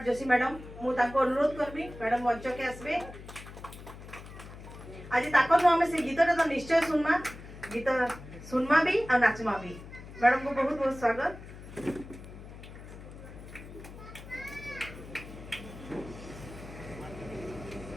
जोशी मैडम मु ताको अनुरोध करबी मैडम मंच के आसबे। आज ताकर हम से गीतटा तो निश्चय सुनमा गीत सुनमा भी और नाचमा भी। मैडम को बहुत बहुत स्वागत।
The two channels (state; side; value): noise; left; hum, 15 dB below the sound